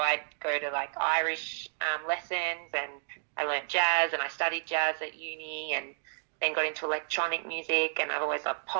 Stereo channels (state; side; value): silent; left; digital silence